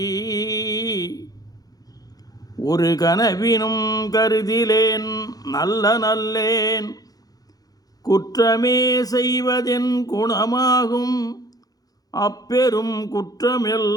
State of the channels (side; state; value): right; late; 0.18 ms